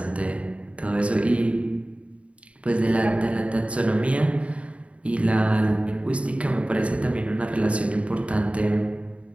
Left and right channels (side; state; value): left; late; 0.063 ms